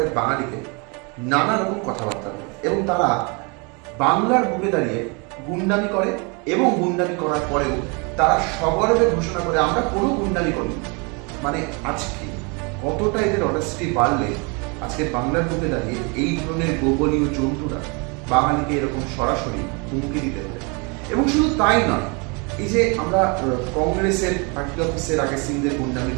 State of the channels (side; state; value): left; quieter; 31.8 dB